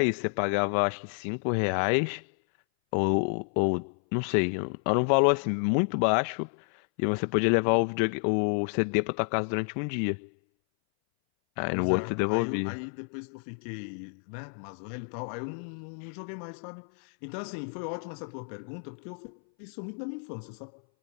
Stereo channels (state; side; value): silent; right; 58 dB below the other